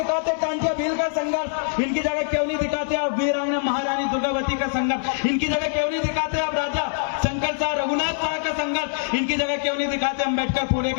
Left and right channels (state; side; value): silent; right; digital silence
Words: कांटिया भील का संघर्ष? इनकी जगह क्यों नहीं दिखाते आप वीरांगना महारानी दुर्गावती का संघर्ष? इनकी जगह क्यों नहीं दिखाते आप राजा शंकर शाह रघुनाथ शाह का संघर्ष? इनकी जगह क्यों नहीं दिखाते अम्बेडकर फूले